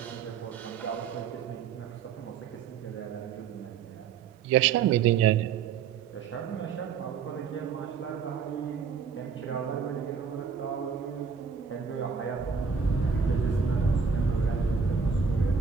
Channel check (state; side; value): quieter; left; 6.2 dB